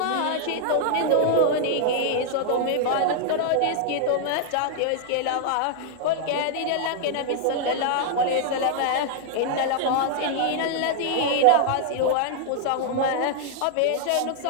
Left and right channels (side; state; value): both; different; correlation -0.01